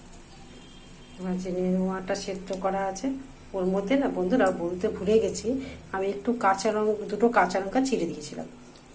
এবার যে নেনুয়াটা সেদ্ধ করা আছে ওর মধ্যে না বন্ধুরা, বলতে ভুলে গেছি, আমি একটু দুটো কাঁচা লঙ্কা চিড়ে দিয়েছিলাম।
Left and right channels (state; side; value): identical; both; correlation 1.00